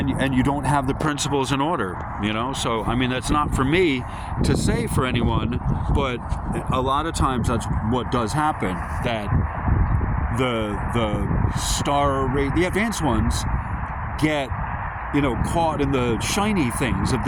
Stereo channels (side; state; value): both; identical; correlation 1.00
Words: you don't have the principles in order, you know? So, I mean, that's not for me to say for anyone, but a lot of times that's what does happen, that the advanced ones get, you know, caught in the shiny things of